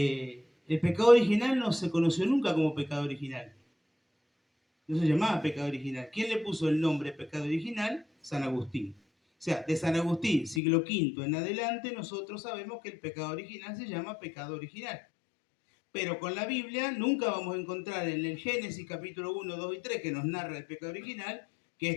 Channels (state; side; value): drops out; right; at 10.6 s